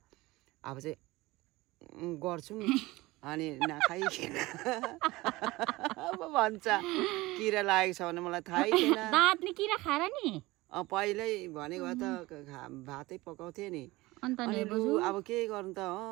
अब चाहिँ गर्छौँ। अनि नखाइकन अब भन्छ किरा लागेको छ भने मलाई थाहै थिएन। दाँतले किरा खाएर नि? पहिल्यै भनेको त भातै पकाउँथे नि। अन्त अनि लु अब के गर्नु त,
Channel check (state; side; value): quieter; left; 20.2 dB